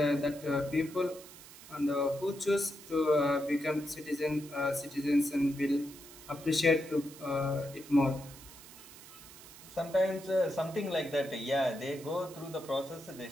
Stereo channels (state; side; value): noise; right; hiss, 18 dB below the sound